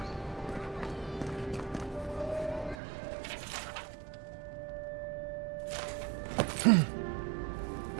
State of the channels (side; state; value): left; drops out; at 2.8 s